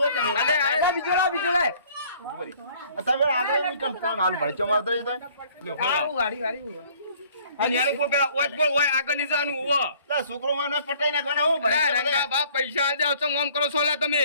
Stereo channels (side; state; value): both; inverted; correlation -0.57